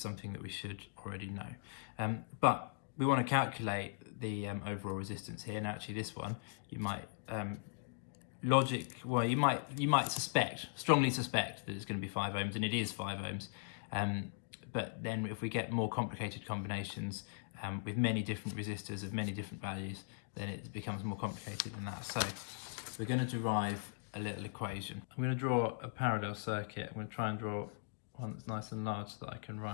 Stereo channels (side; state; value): right; silent; digital silence